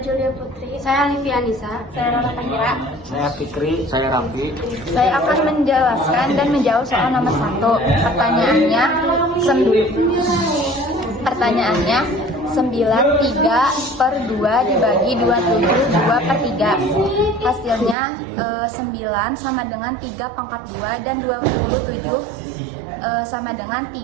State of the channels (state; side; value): drops out; left; at 17.9 s